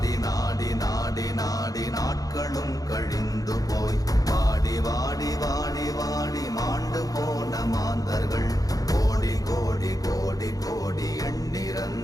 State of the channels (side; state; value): right; late; 0.18 ms